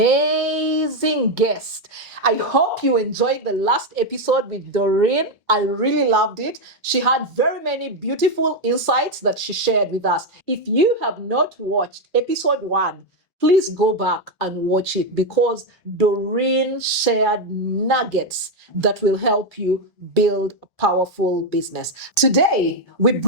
guest. I hope you enjoyed the last episode with Doreen. I really loved it. She had very many beautiful insights that she shared with us. If you have not watched episode 1, please go back and watch it because Doreen shared nuggets that will help you build a powerful business. Today, we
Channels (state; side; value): normal; both; correlation 0.05